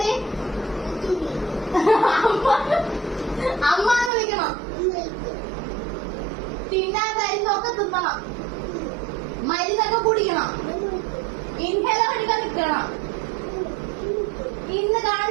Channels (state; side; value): drops out; left; at 4.1 s